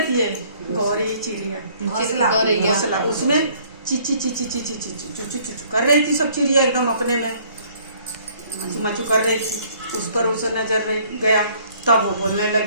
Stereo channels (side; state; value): both; inverted; correlation -0.59